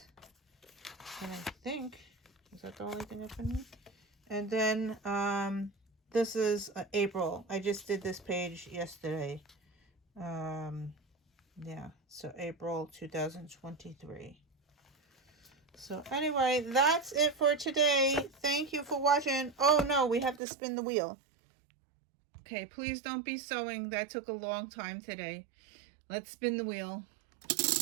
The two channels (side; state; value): left; drops out; at 20.4 s